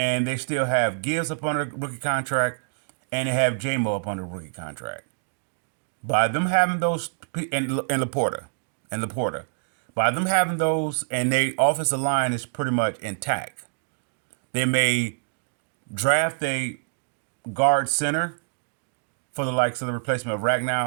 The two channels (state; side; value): silent; left; digital silence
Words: they still have Gibbs up on a rookie contract, and they have J-Mo up on a rookie contract. By them having those, and Laporta, by them having those, and their offensive line is pretty much intact. They may draft a guard center for the likes of the replacement of